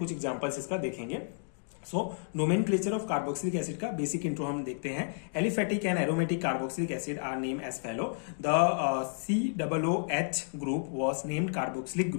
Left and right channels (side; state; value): right; silent; digital silence